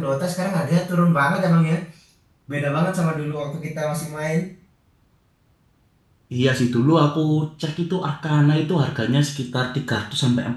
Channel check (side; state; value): both; identical; correlation 1.00